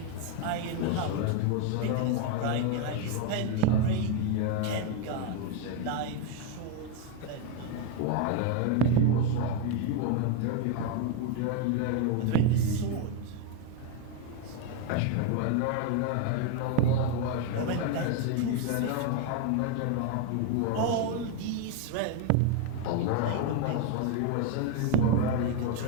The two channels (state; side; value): different; both; correlation 0.02